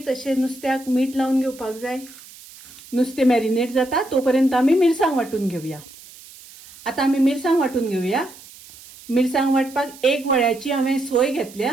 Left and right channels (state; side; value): noise; right; hiss, 20 dB below the sound